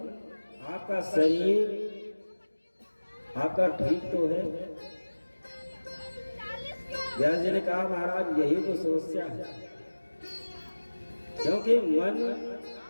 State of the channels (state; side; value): inverted; both; correlation -1.00